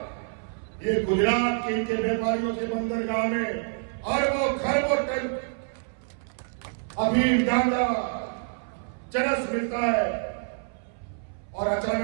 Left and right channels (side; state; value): left; silent; 60 dB below the other